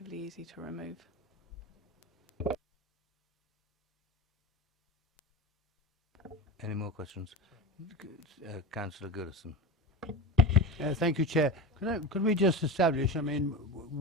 easy to remove. Any more questions? Councillor Goodison. Thank you, Chair. Could we just establish, I mean,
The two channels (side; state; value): both; normal; correlation 0.27